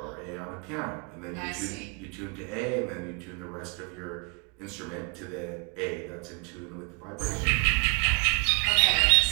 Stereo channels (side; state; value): left; quieter; 33.5 dB